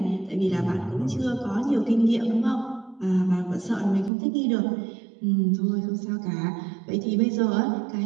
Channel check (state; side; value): drops out; left; at 4.1 s